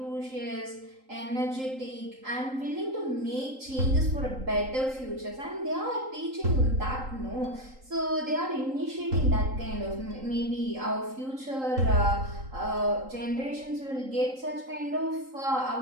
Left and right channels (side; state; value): left; late; 3.8 ms